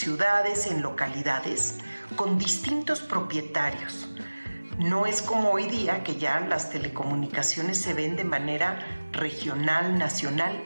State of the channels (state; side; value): inverted; both; correlation -1.00